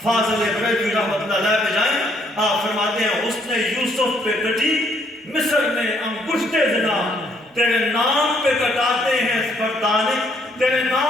فاضل بریلوی رحمۃ اللہ علیہ پہ جائیں، آپ فرماتے ہیں حسن یوسف پہ کٹی مصر میں انگشت زنا، تیرے نام پہ کٹاتے ہیں مردانے، تیرے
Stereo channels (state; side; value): normal; both; correlation 0.68